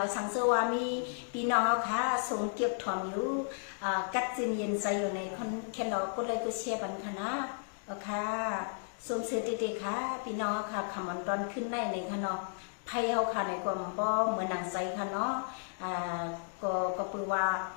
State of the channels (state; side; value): silent; right; digital silence